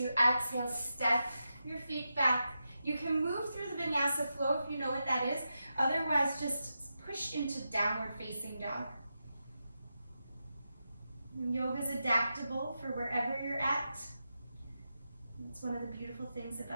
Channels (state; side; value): inverted; both; correlation -0.89